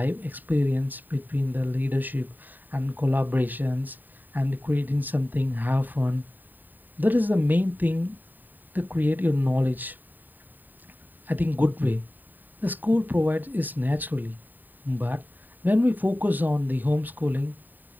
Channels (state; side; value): late; left; 0.089 ms